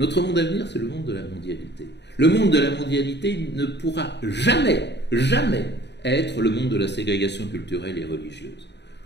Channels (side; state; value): right; late; 0.50 ms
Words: monde à venir, c'est le monde de la mondialité. Le monde de la mondialité ne pourra jamais, jamais être le monde de la ségrégation culturelle et religieuse,